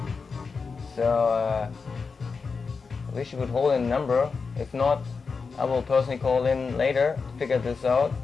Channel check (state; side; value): quieter; right; 4.9 dB